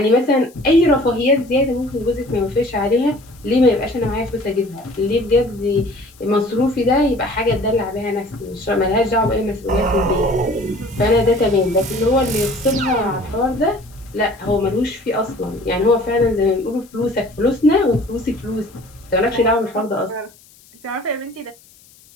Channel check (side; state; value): left; noise; hiss, 27 dB below the sound